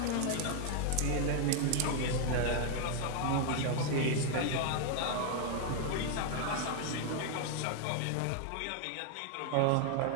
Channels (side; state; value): both; different; correlation 0.00